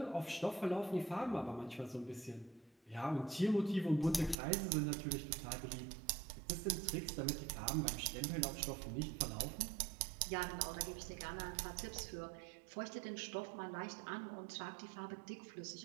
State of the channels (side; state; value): left; drops out; at 4.4 s